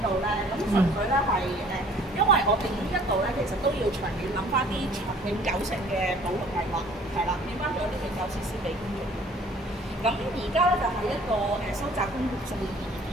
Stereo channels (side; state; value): both; normal; correlation 0.54